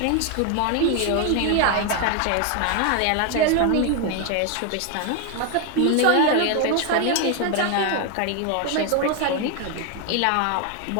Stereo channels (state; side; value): different; both; correlation 0.01